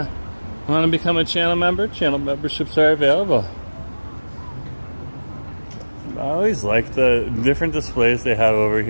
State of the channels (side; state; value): both; inverted; correlation -1.00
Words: want to become a channel member, channel memberships are available. I always like the different displays they have over